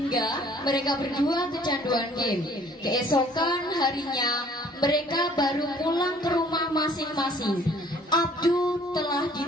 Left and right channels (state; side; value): normal; both; correlation 0.56